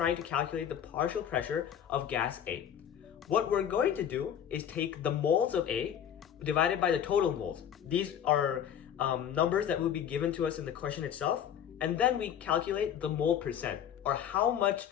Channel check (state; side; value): quieter; right; 9.3 dB